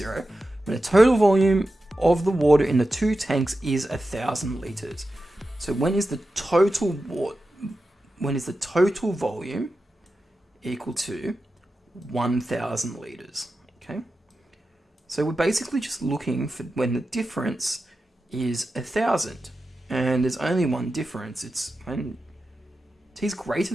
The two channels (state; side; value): normal; both; correlation 0.92